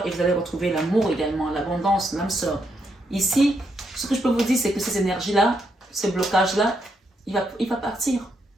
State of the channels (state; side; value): normal; both; correlation 0.79